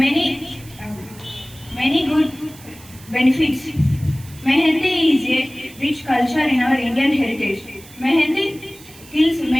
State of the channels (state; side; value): noise; right; hiss, 21 dB below the sound